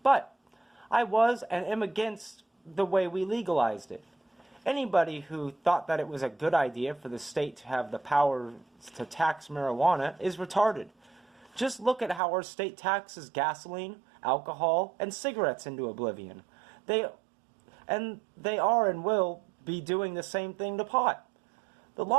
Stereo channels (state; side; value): drops out; left; at 12.2 s